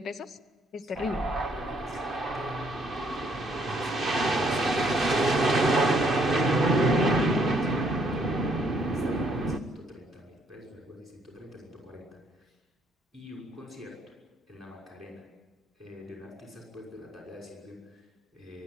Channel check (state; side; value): normal; both; correlation 0.68